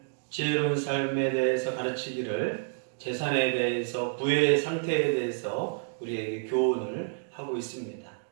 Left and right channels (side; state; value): left; silent; digital silence